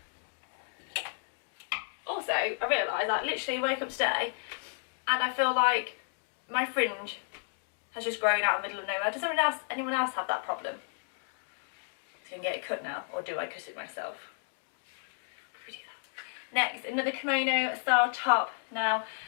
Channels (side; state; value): right; silent; digital silence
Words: Also, I realised I literally woke up today and I feel like my fringe has just grown out in the middle of nowhere. Does anyone else have that problem? So I can get it cut now, or do I cut it myself? Probably do that. Next, another kimono style top. Now,